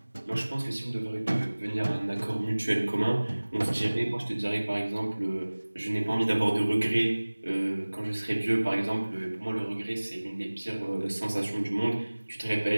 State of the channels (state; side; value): inverted; both; correlation -1.00